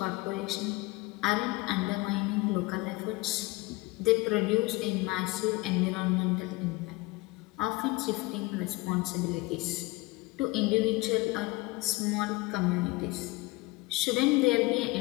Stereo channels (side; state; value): right; quieter; 22.6 dB